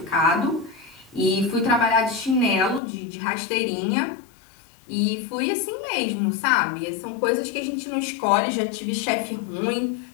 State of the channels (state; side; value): drops out; right; at 2.8 s